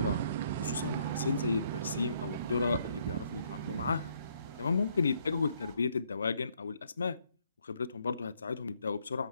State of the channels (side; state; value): both; inverted; correlation -0.69